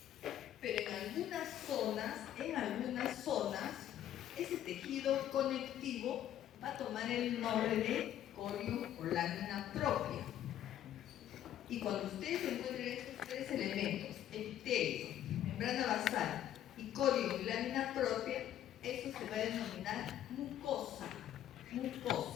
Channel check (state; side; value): quieter; right; 11.5 dB